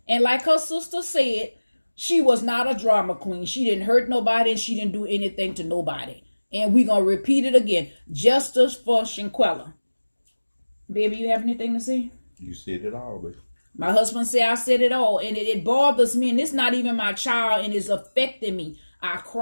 And like her sister said, she was not a drama queen. She didn't hurt nobody, and she didn't do anything to nobody. And we're going to repeat it again. Justice for Shanquella. Baby, you have anything to say? You said it all, baby. My husband said I said it all. And it bothers me. And it's not even my child. And it's affecting me. I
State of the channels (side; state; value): both; inverted; correlation -1.00